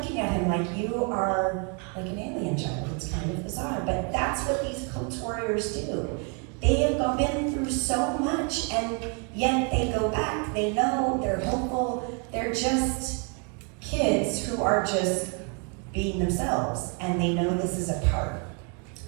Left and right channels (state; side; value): quieter; left; 35.8 dB